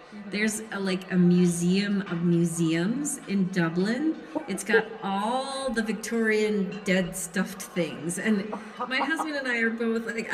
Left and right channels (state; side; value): identical; both; correlation 1.00